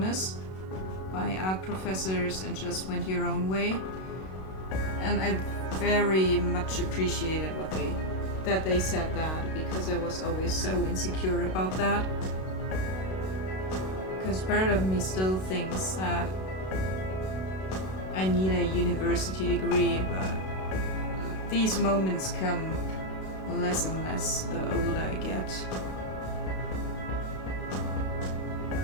by art professors and just went your own way. And I very much appreciated that they said that, because I was always so insecure about that. Because part of me still thinks that I need a university degree, but these moments come less and less the older I get.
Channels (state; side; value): late; right; 32 ms